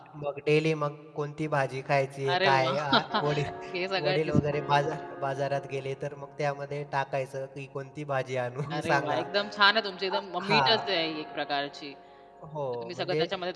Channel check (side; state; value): both; identical; correlation 1.00